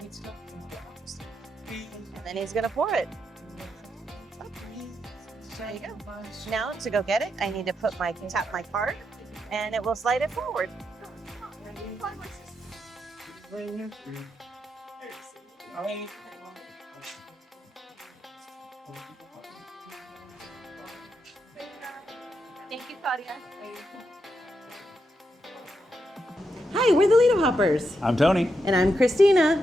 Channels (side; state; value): both; normal; correlation 0.83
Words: And then he's gonna pour it. There you go. Now to go get it, I need to tap my card, and it will slide it forward. Thank you, Claudia. Hi, we're the Lido Hoppers. I'm Tony. And I'm